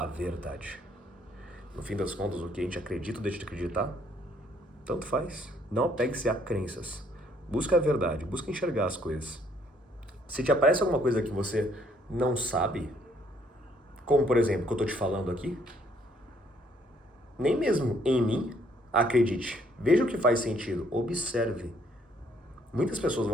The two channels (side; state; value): both; normal; correlation 0.66